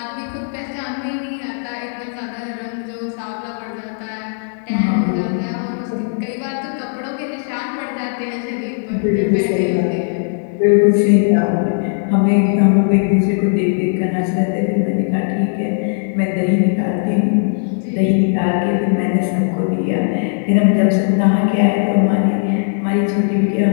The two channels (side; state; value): right; silent; digital silence